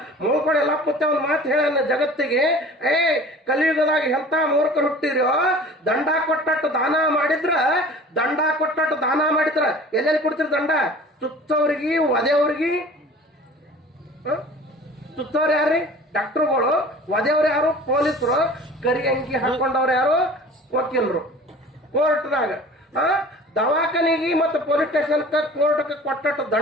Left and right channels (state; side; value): normal; both; correlation 0.44